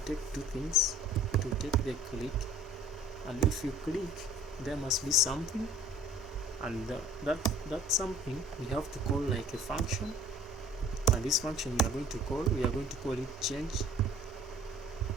take two things. It will take the click, and if you click there must be something, and that something we have to call like a function, and this function we are going to call it change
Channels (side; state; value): both; normal; correlation 0.51